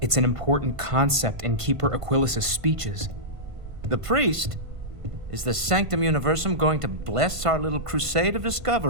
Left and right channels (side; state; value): left; late; 1.5 ms